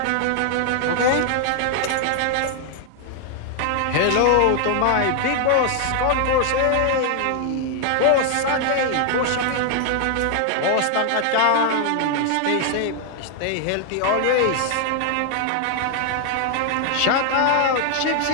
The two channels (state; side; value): different; both; correlation 0.00